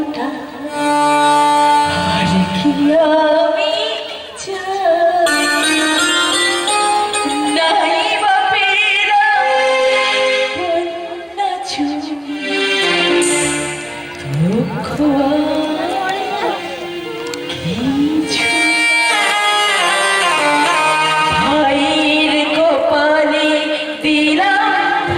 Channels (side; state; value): both; identical; correlation 1.00